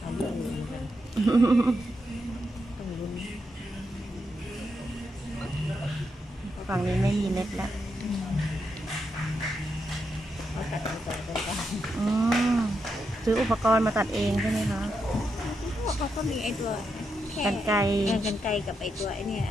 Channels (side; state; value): both; normal; correlation 0.83